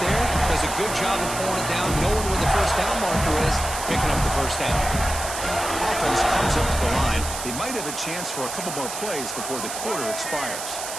there, does a good job of pulling it down, knowing where the first down marker is, picking up the first down. Offense comes up to the line. They might have a chance for a couple more plays before the quarter expires.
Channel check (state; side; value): noise; right; hiss, 7 dB below the sound